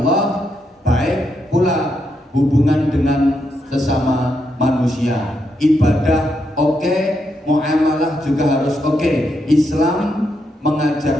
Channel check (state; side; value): normal; both; correlation 0.81